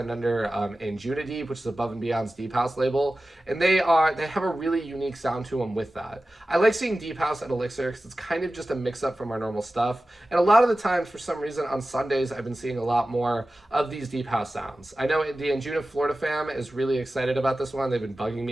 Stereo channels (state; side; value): normal; both; correlation 0.95